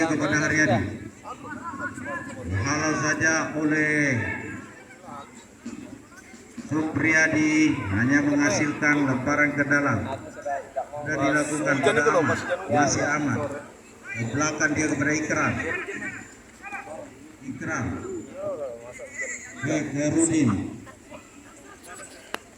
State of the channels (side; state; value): both; identical; correlation 1.00